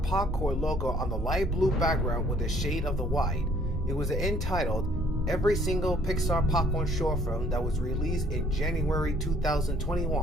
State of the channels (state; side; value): normal; both; correlation 0.61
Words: Popcorn logo on the light blue background with a shade of the white. It was entitled Every Single Pixar Popcorn Short Film that was released in January